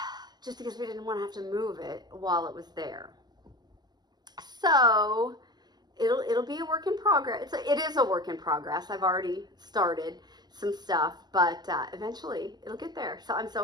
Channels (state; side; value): late; left; 0.20 ms